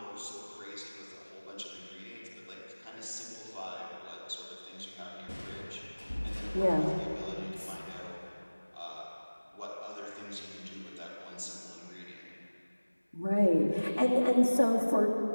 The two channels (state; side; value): inverted; both; correlation -1.00